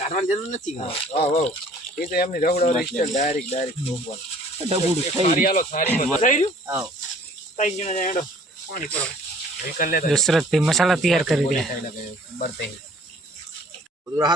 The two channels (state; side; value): normal; both; correlation 0.54